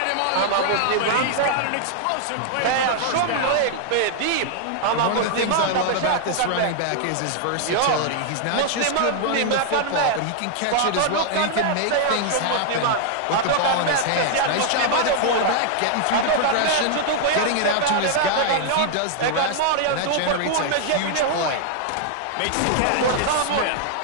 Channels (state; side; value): different; both; correlation -0.01